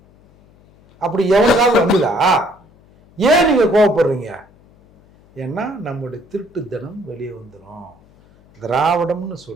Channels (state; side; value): noise; left; hum, 29 dB below the sound